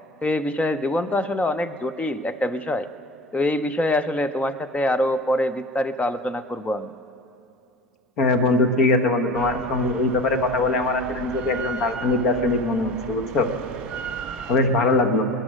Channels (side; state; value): both; normal; correlation 0.35